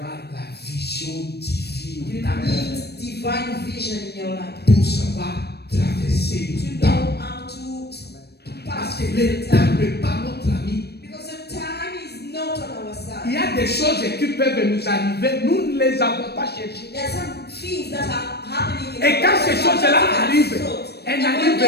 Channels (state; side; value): late; right; 0.47 ms